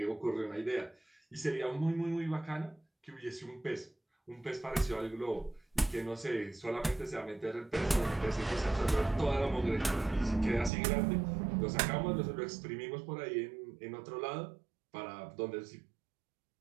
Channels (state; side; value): drops out; left; at 10.7 s